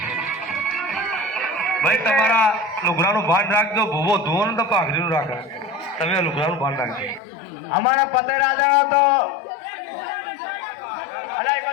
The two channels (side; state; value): right; drops out; at 7.2 s